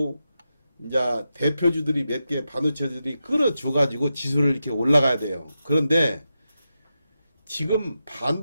이제 대표주들이 몇 개 반도체들이 끌어줘 가지고 지수를 이렇게 올라가야 돼요. 그런데 지금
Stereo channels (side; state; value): both; inverted; correlation -0.89